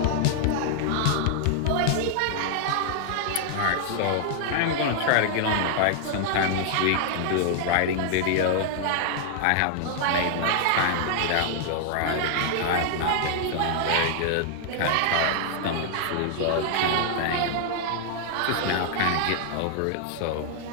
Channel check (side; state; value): both; different; correlation 0.00